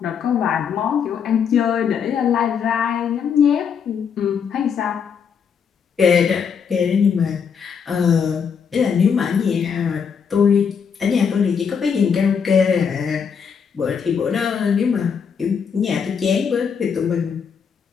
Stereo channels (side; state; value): right; quieter; 6.7 dB